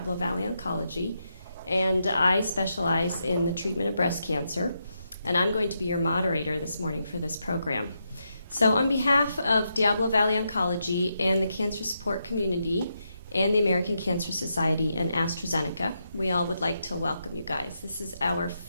Valley Oncology, and I specialize in the treatment of breast cancer, and I'm going to be your moderator this morning for this program. So on behalf of Diablo Valley Oncology and the cancer support community and the American Cancer Society and AstraZeneca, we all would like to welcome you guys. This is our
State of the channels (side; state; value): both; inverted; correlation -0.83